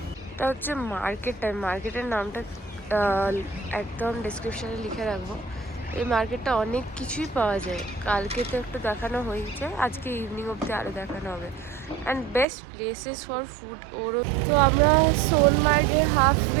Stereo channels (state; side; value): drops out; left; at 12.5 s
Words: এটা হচ্ছে মার্কেটটা, মার্কেটের নামটা একদম ডেসক্রিপশানে লিখে রাখবো। এই মার্কেটটা অনেক কিছুই পাওয়া যায়। কালকে তো একটু দেখানো হয়েছে, আজকে ইভিনিং অবধি আরও দেখানো হবে। And best places for food ওরও। তো আমরা সোনমার্গে